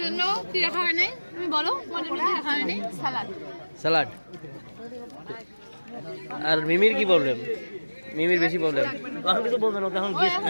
জন্য কি রাখা হয় নাই, তুমি বলো তোমার জন্য কি রাখা হয় নাই? সালাদ। স্যালাড। আর মিমির কি প্রবলেম? মিমির বেশি প্রবলেম। কিছু বলবে না, তখন গেস্ট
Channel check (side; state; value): both; inverted; correlation -1.00